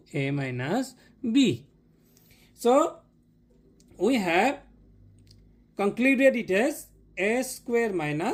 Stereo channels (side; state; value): both; identical; correlation 1.00